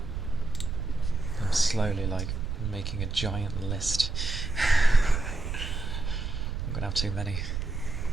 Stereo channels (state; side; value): noise; right; rumble, 4 dB below the sound